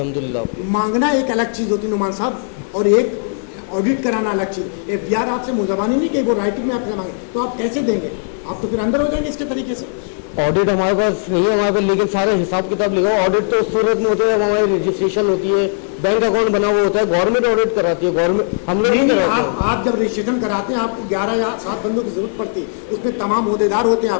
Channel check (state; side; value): silent; right; 61 dB below the other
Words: मांगना एक अलग चीज़ होती है नुमान साहब, और एक ऑडिट कराना अलग चीज़। एफबीआर आपसे मुजबानी नहीं कि वो राइटिंग में आपसे मांगे, तो आप कैसे देंगे? आप तो फिर अंदर हो जाएंगे इसके तरीके से। ऑडिट हमारे पास नहीं है हमारे पास, लेकिन सारे हिसाब किताब लिखा हुआ। ऑडिट तो उस सूरत में होता है जब हमारी रजिस्ट्रेशन होती है, बैंक अकाउंट बना हुआ होता है, गवर्नमेंट ऑडिट कराती है, गवर्नमेंट हम लोग नहीं कराते हैं। आप जब रजिस्ट्रेशन कराते हैं आपको 11 या 7 बंदों की जरूरत पड़ती है, उसमें तमाम ओहदेदार होते हैं